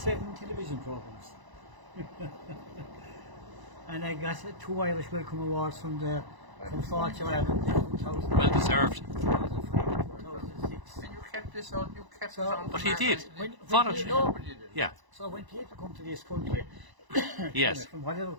television programs. And I got 2 Irish Welcome Awards from Fortune Ireland in 2000. Well deserved. 2006. And you kept this on. You kept So- it on. But he did. When Voluntary. Nobody did it. Yeah. So when people come to this country, Yes. from whatever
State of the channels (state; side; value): late; left; 1.0 ms